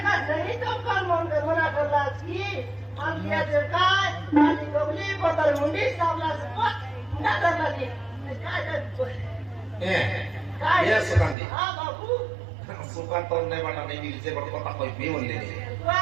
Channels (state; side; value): drops out; left; at 11.4 s